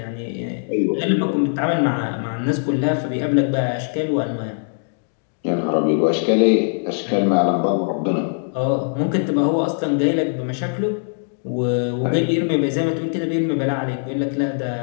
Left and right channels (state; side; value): silent; right; digital silence